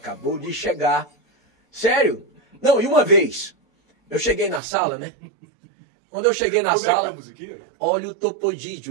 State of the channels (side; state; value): left; drops out; at 4.6 s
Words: de chegar. Sério? Não, e uma vez, eu cheguei na sala, né? Quando eu cheguei na sala, olha o